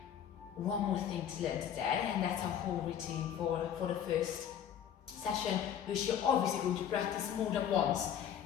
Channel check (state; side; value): quieter; right; 9.2 dB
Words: One more thing to learn today, and that's our whole routine for the first session, which you're obviously going to practice more than once.